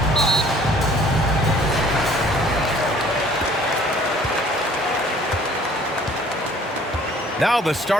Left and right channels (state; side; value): normal; both; correlation 0.54